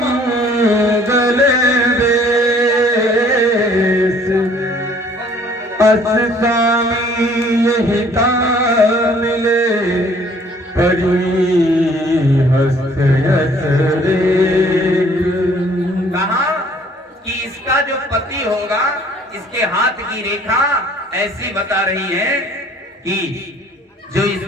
वेश, अस स्वामी यही मिले परी हस्त यस रेख। कहा कि इसका जो पति होगा इसके हाथ की रेखा ऐसी बता रही है कि जो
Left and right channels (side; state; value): both; normal; correlation 0.58